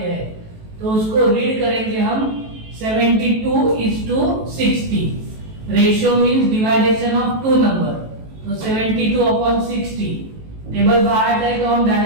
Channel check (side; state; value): left; late; 18 ms